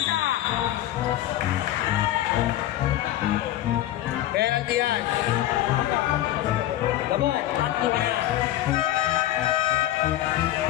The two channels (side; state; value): right; quieter; 13.8 dB